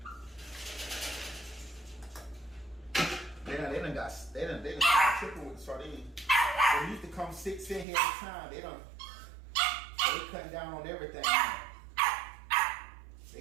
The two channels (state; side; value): drops out; left; at 7.9 s